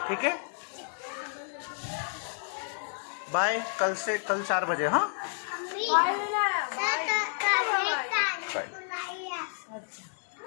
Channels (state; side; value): silent; right; digital silence